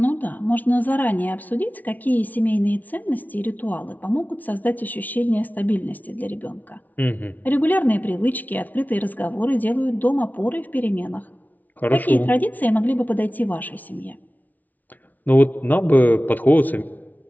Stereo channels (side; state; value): right; late; 0.077 ms